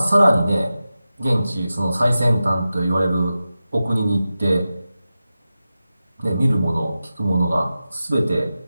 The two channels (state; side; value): inverted; both; correlation -0.93